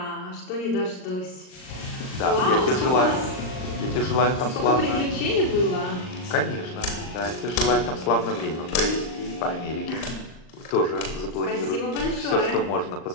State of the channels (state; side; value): late; right; 39 ms